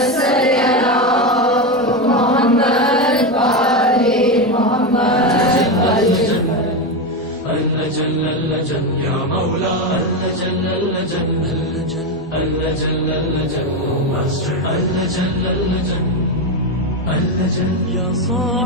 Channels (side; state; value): both; normal; correlation 0.13